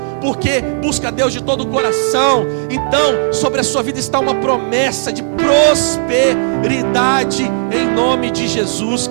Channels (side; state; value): left; silent; digital silence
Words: porque busca a Deus de todo o coração. Então, sobre a sua vida está uma promessa de prosperidade em nome de Jesus,